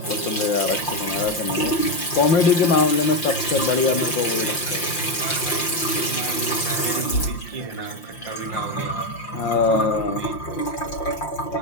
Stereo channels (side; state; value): right; late; 5.7 ms